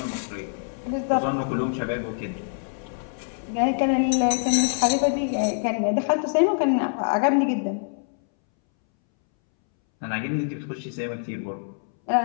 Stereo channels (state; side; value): silent; right; 62 dB below the other